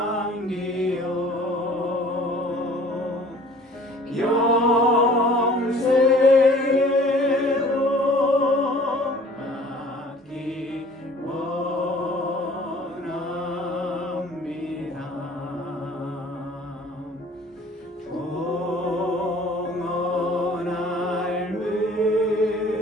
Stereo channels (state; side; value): normal; both; correlation 0.51